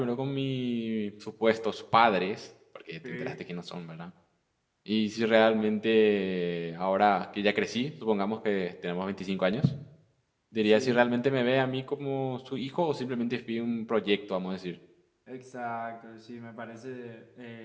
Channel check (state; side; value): identical; both; correlation 1.00